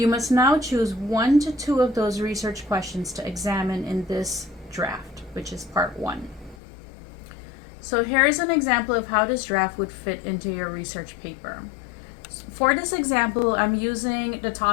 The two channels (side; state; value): right; drops out; at 6.6 s